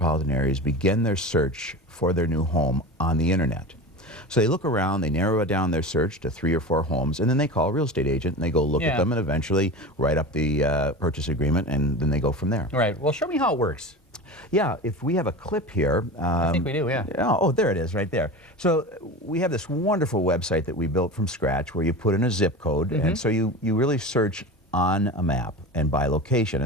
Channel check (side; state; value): both; normal; correlation 0.29